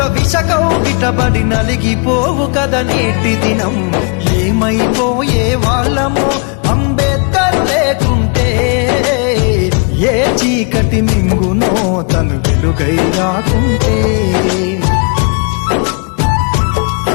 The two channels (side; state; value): right; quieter; 36.8 dB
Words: విషకౌగిటబడి నలిగిపోవు కథ నేటి దినం. ఏమైపోయే వాళ్ళమో అంబేద్కర్ లేకుంటే, ఏ చీకటి మింగునో తను వెలుగై రాకుంటే.